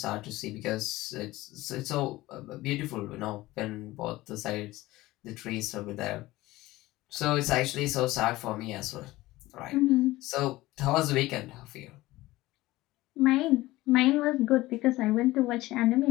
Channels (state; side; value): quieter; right; 18.2 dB